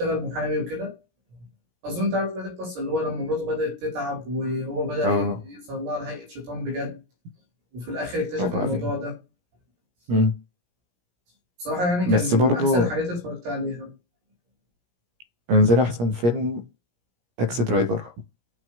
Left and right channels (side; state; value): left; late; 17 ms